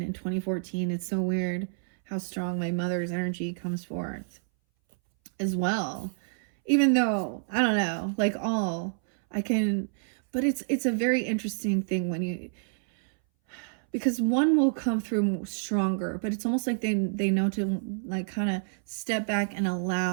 and 2014, it's so weird how strong my mother's energy comes forth as well. Even though, I don't know, like all I can, but it's a very interesting thing when you, because one will come through stronger, but it's almost like they know to like kind of step back and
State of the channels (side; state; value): left; silent; 59 dB below the other